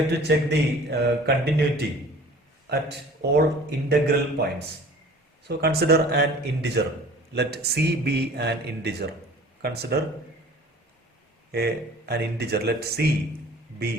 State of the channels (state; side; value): normal; both; correlation 0.47